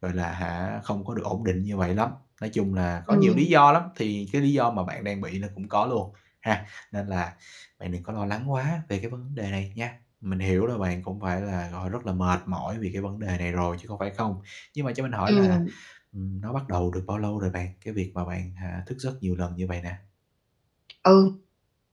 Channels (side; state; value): both; identical; correlation 1.00